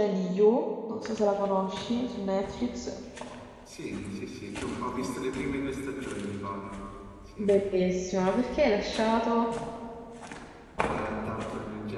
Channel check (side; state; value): both; identical; correlation 1.00